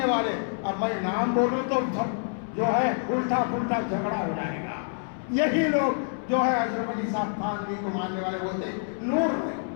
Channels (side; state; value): right; silent; 60 dB below the other